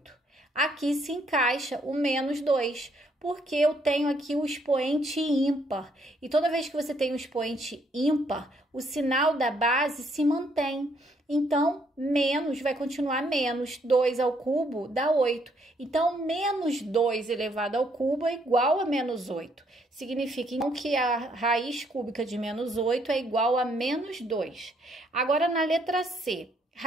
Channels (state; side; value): normal; both; correlation 0.70